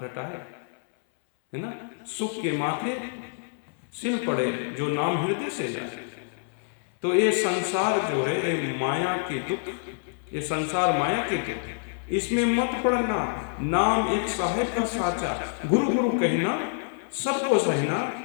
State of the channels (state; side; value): silent; right; 60 dB below the other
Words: रटाए, है ना, सुख के माथे सिल पड़े, जो नाम हृदय से जाए। तो ये संसार जो है, ये माया के दुख, ये संसार माया के दुख, इसमें मत पड़ना। नाम एक साहेब का साचा, गुरु गुरु कहना सबको सहना,